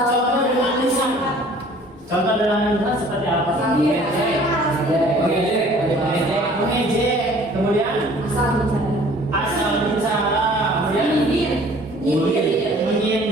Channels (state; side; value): normal; both; correlation 0.52